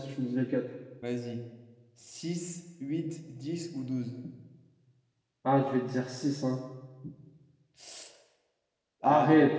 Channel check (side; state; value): both; identical; correlation 1.00